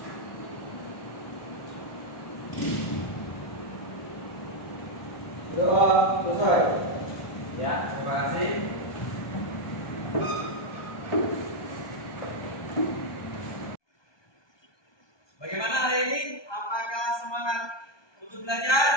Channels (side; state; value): right; late; 1.2 ms